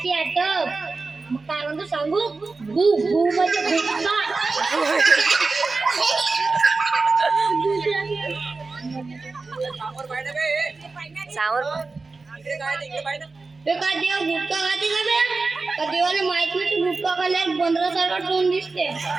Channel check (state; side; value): quieter; left; 3.9 dB